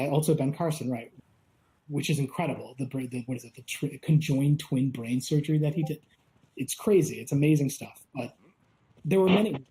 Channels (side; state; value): both; identical; correlation 1.00